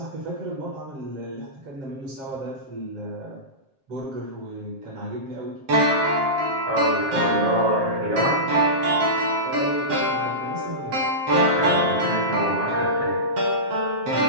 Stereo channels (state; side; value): late; left; 7.5 ms